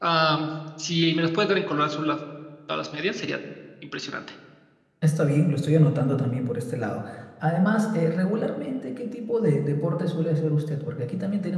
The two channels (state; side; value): identical; both; correlation 1.00